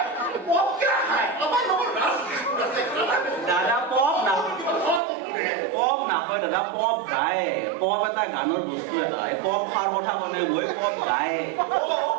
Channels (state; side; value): drops out; left; at 5.0 s